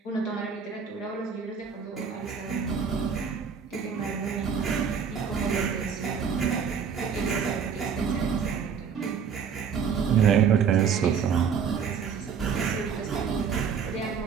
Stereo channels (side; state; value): left; quieter; 6.7 dB